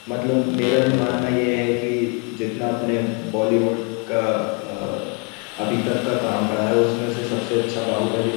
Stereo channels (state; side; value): quieter; right; 35.0 dB